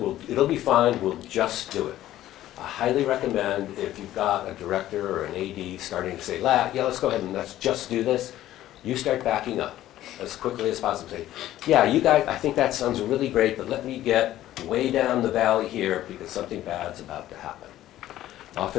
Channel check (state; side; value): quieter; right; 13.7 dB